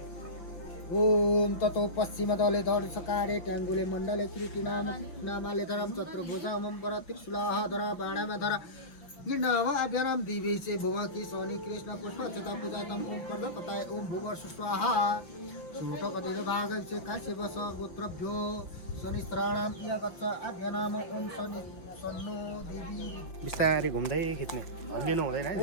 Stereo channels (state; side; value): late; right; 5.9 ms